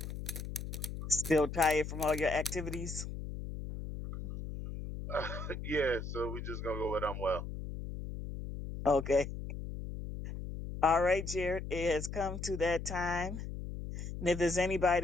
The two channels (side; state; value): left; noise; hum, 7 dB below the sound